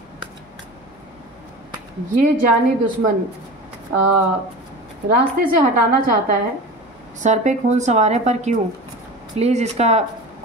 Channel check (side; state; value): both; normal; correlation 0.33